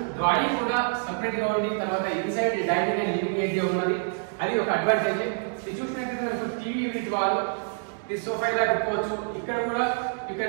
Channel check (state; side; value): silent; left; 60 dB below the other